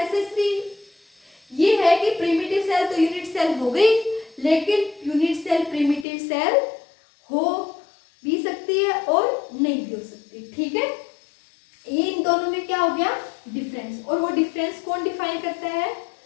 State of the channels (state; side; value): drops out; right; at 6.1 s